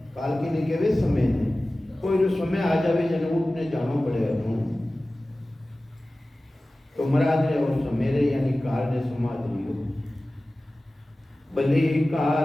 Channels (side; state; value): both; normal; correlation 0.97